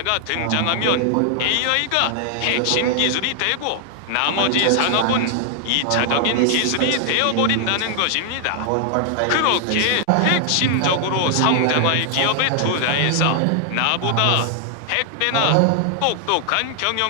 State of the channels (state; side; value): different; both; correlation 0.00